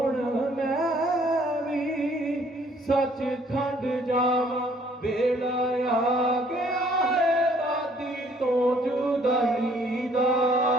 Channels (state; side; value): normal; both; correlation 0.61